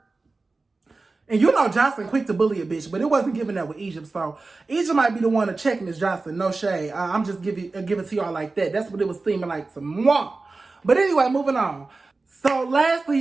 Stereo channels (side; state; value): left; quieter; 3.7 dB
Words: And you know Joseline quick to bully a bitch, but it wasn't giving that with Egypt. So Egypt might be the one to check Miss Joseline. No shade. I'm just give it to y'all like that. That's what it was seeming like to moi. But anyway, moving on. So